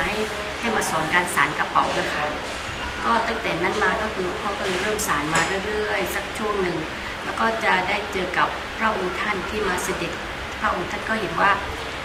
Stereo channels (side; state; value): both; identical; correlation 1.00